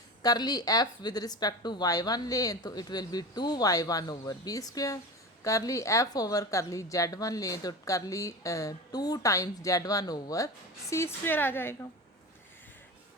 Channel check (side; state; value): both; normal; correlation 0.27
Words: curly f with respect to y1 लें तो it will be 2y1 over b square, curly f over curly z1 लें तो curly 2 times z1 over c square आ जाएगा।